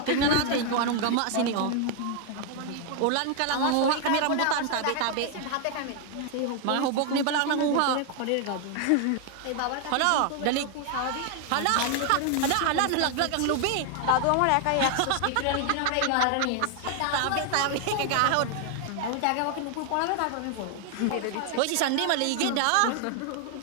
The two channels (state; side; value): different; both; correlation 0.00